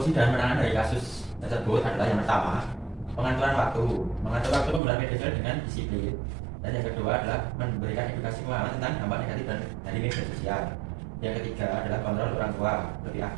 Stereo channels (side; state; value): left; drops out; at 4.8 s